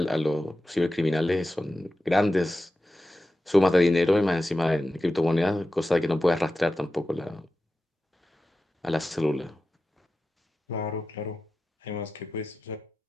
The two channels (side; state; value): both; normal; correlation 0.93